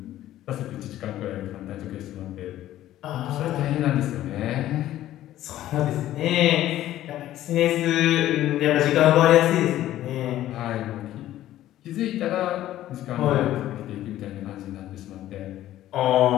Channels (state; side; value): quieter; right; 13.5 dB